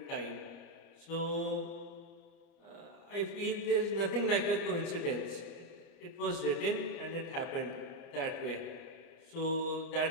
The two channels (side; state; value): right; late; 30 ms